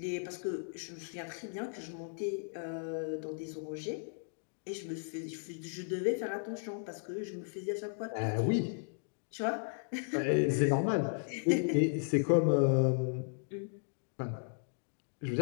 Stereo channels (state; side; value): silent; right; digital silence